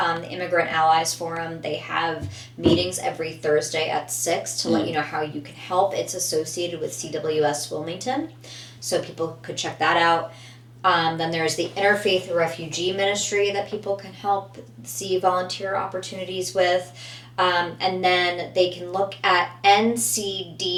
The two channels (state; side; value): identical; both; correlation 1.00